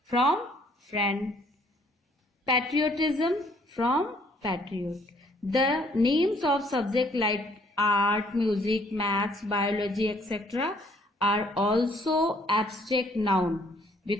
from friend. Patriotism from patriot. The names of subject like art, music, maths, biology etcetera are also abstract noun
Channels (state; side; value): normal; both; correlation 0.63